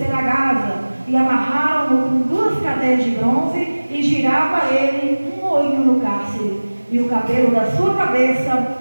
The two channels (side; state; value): both; inverted; correlation -1.00